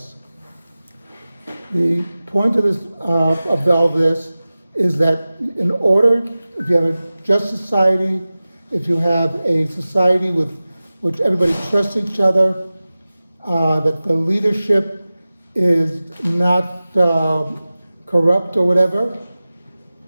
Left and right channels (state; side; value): inverted; both; correlation -0.97